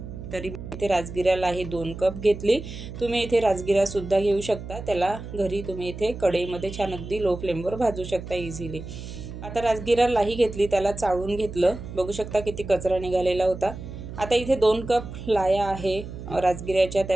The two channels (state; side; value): noise; right; hum, 10 dB below the sound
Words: तरी इथे राजगिरा लाही 2 कप घेतली। तुम्ही इथे राजगिरा सुद्धा घेऊ शकता, त्याला घरी तुम्ही इथे कढईमध्ये छान अगदी लो फ्लेमवर भाजू शकता इझिली। आता राजगिरा लाही घेतली, त्याला चाळून घेतलं। बघू शकता किती कचरा निघालेला होता। आता इथे 2 कप लाया आहे राजगिऱ्याच्या,